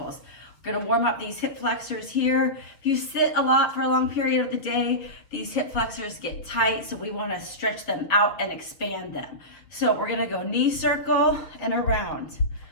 We're going to warm up these hip flexors here. If you sit a lot for a long period of the day, these hip flexors get tight, so we want to stretch them out and expand them. So we're going to go knee circle and around.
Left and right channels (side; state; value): right; late; 7.5 ms